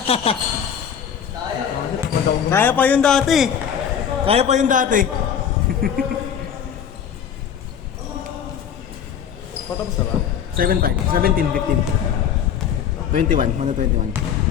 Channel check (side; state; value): right; quieter; 8.4 dB